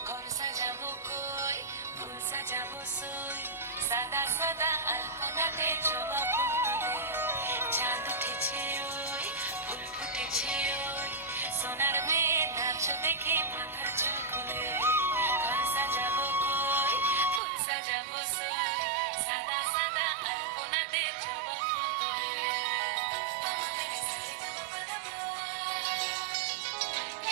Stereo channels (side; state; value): left; drops out; at 17.4 s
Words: ঘর সাজাবো কই ফুল সাজাবো সই সাদা সাদা আলপনাতে জবা ফুল তুলে চাঁদ উঠেছে ওই ফুল ফুটেছে ওই সোনার মেয়ে নাচ দেখে মাথার চুল খুলে ঘর সাজাবো কই ফুল সাজাবো সই সাদা সাদা আলপনাতে জবা ফুল তুলে